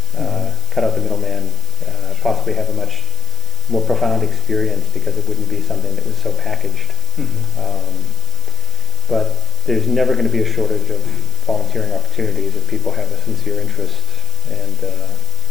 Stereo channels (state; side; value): noise; right; hiss, 13 dB below the sound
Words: cut out the middleman, possibly have a much more profound experience because it wouldn't be something that was so packaged. But there's never going to be a shortage of volunteering opportunities if people have a sincere interest, and